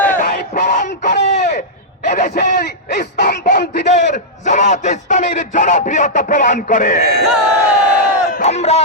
এটাই প্রমাণ করে এদেশের ইসলামপন্থীদের জামাত ইসলামীর জনপ্রিয়তা প্রমাণ করে। আমরা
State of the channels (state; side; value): normal; both; correlation -0.10